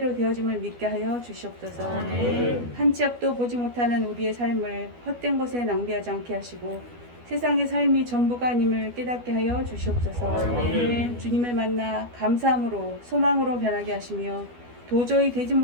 되어짐을 믿게 하여 주시옵소서. 한 치 앞도 보지 못하는 우리의 삶을 헛된 것에 낭비하지 않게 하시고 세상의 삶이 전부가 아님을 깨닫게 하여 주시옵소서. 주님을 만나 감사함으로 소망으로 변하게 하시며 도저히 되지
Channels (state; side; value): late; left; 12 ms